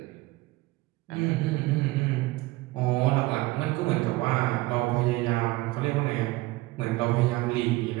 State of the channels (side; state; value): left; quieter; 20.0 dB